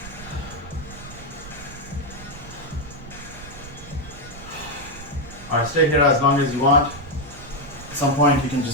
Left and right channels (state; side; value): noise; right; rumble, 15 dB below the sound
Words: Alright, stay here as long as you want. At some point you can